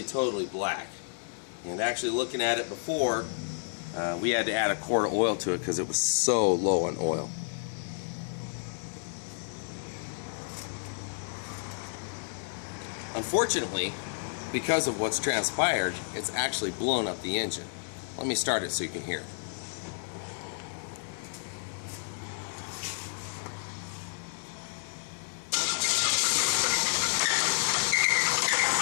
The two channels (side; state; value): right; silent; 57 dB below the other